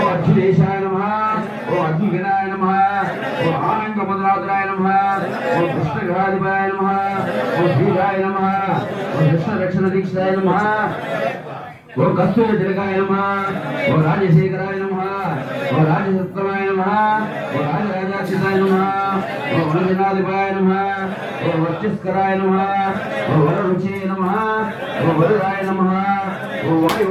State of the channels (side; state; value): both; identical; correlation 1.00